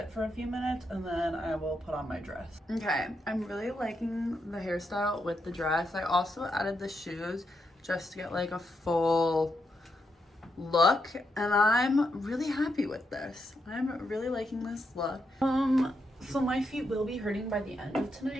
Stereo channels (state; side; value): normal; both; correlation 0.82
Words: for a few minutes and then I will put on my dress. Okay, I'm really liking the hairstyle with the dress. I also added the shoes just to get like a full look, and I'm really happy with this. I'm really liking this look. So my feet will be hurting by the end of